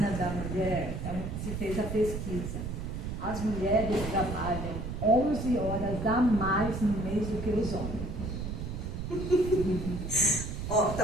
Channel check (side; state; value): right; noise; rumble, 5 dB below the sound